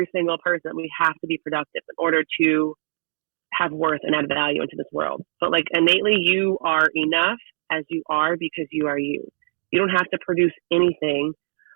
single person. We have to be productive in order to have worth and add value into this world. But like innately, you are enough as you are because you are you. You don't have to produce anything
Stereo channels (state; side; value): silent; left; 64 dB below the other